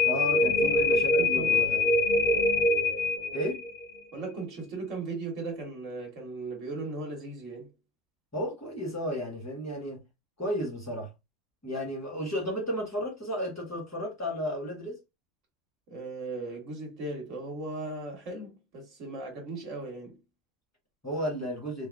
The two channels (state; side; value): normal; both; correlation 0.40